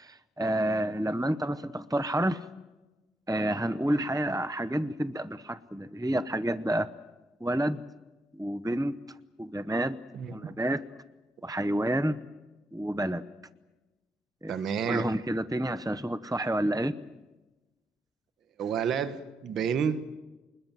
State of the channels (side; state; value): both; normal; correlation 0.82